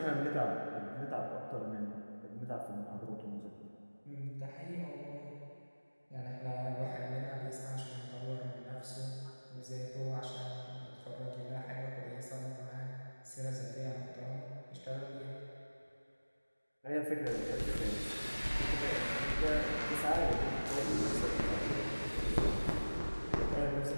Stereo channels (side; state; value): both; inverted; correlation -1.00